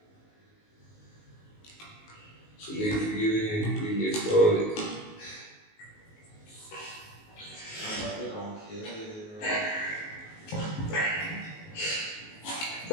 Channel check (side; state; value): right; late; 19 ms